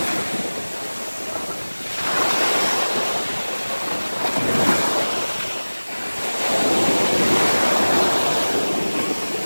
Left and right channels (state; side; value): inverted; both; correlation -1.00